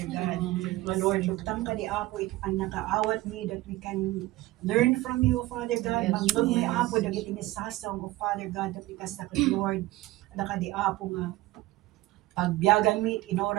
God. My Lord, luktang ka di Apo, ito ang nakaawat me that we can learn from you, Father God. Manglog may Apo, dagit inisasaw mo, Father God, that we kasakot, Lord, na ka di Apo nga pagbiyagan mi in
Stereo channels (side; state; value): left; quieter; 17.9 dB